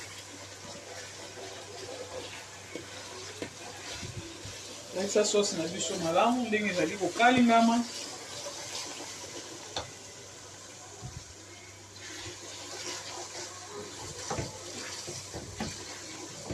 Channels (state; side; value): identical; both; correlation 1.00